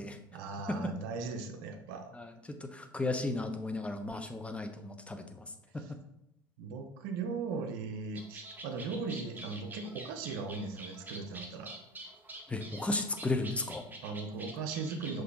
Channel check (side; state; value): both; normal; correlation 0.41